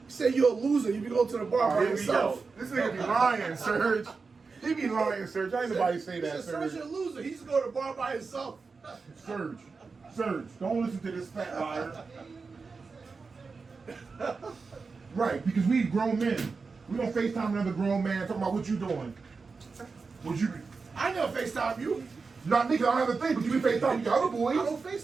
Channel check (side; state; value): left; quieter; 4.6 dB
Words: you're a loser. You be going to the bar by Here we yourself. go. This nigga be lying, Serge. He be lying, Serge. I ain't nobody say He that, said Serge Serge. a loser. He used to go to the bar by himself. Serge, don't listen to this fat liar. Right, because we grown men. We don't FaceTime another grown man talking about what you doing. What you? I never FaceTime you. Not me, 'cause I don't have a thing, but you be FaceTime your other I boys. don't